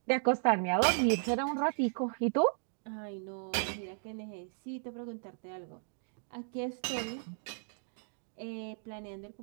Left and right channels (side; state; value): left; silent; digital silence